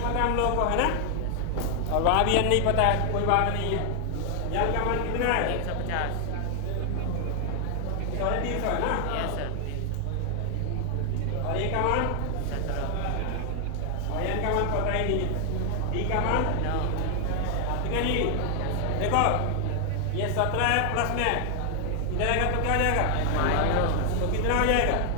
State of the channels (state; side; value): different; both; correlation 0.00